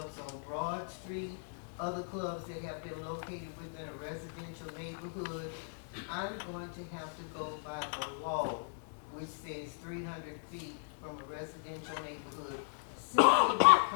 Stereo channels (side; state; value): right; silent; digital silence